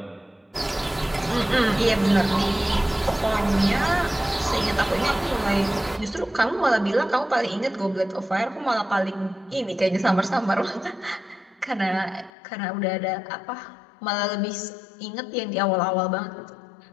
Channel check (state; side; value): drops out; right; at 12.3 s